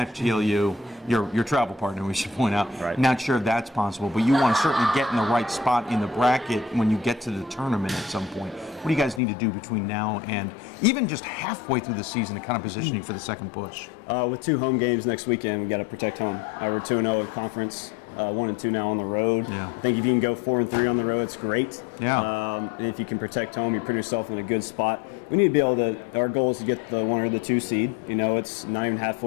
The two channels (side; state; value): right; drops out; at 9.2 s